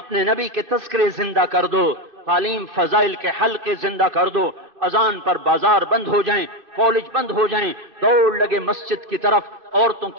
نبی کے تذکرے زندہ کر دو، تعلیم فضائل کے حلقے زندہ کر دو. اذان پر بازار بند ہو جائیں، کالج بند ہو جائیں، دوڑ لگے مسجد کی طرف، عورتوں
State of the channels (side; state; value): left; late; 2.4 ms